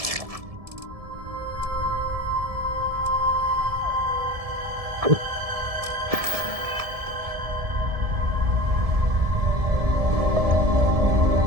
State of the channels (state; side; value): late; left; 1.7 ms